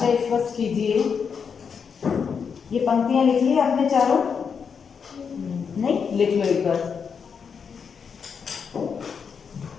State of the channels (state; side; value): quieter; right; 6.4 dB